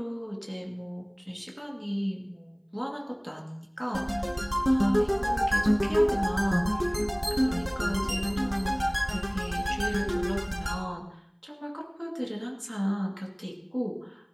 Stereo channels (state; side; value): identical; both; correlation 1.00